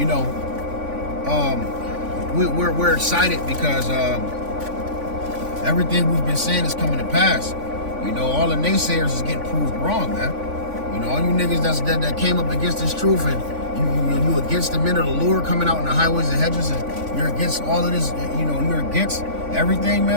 we're excited because everything we've been saying is coming to pass. All the naysayers is getting proved wrong, man. All you niggas that came up against this truth, and you against the men of the Lord coming out in the highways and hedges, and you're against all of this, you're against everything,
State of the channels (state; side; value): late; left; 3.5 ms